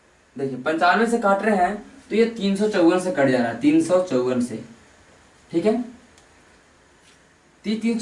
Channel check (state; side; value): identical; both; correlation 1.00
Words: देखिए 95 से काट रहे हैं तो ये 354 से कट जा रहा है, 354 से। ठीक है,